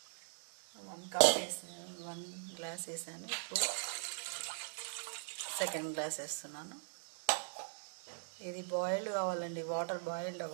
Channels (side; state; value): left; silent; digital silence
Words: 1 కప్ వేసాను, 1 గ్లాస్ వేసాను. ఇప్పుడు సెకండ్ గ్లాస్ వేస్తున్నాను. ఇది బాయిల్డ్ కావాలండి, వాటర్ బాయిల్డ్